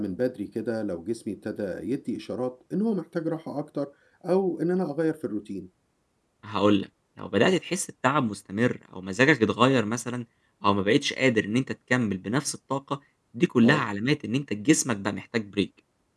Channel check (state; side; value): identical; both; correlation 1.00